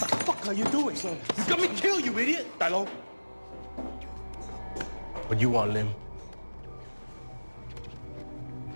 What are you doing? You got me killed, you idiot! Dilo. What you want, Lim?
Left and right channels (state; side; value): inverted; both; correlation -1.00